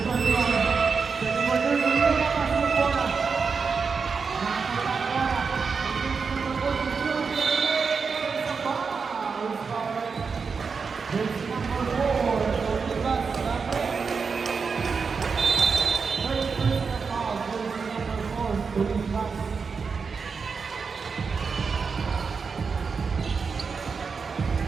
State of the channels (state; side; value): quieter; left; 5.3 dB